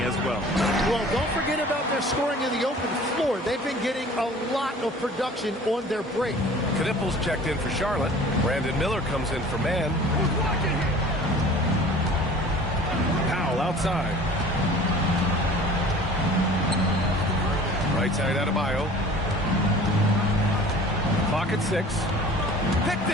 as well. Well, don't forget about their scoring in the open floor. They've been getting a lot of production on their break. Knipples checked in for Charlotte. Brandon Miller comes in for Mann. Powell outside. Right side Adebayo. Clock at 6. Picked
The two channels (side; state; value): both; normal; correlation 0.45